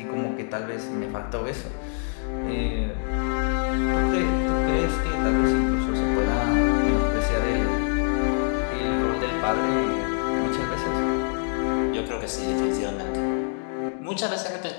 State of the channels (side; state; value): right; silent; 58 dB below the other